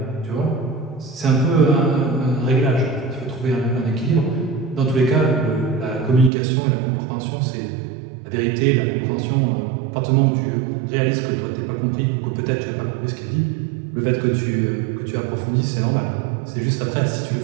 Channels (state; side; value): drops out; left; at 6.3 s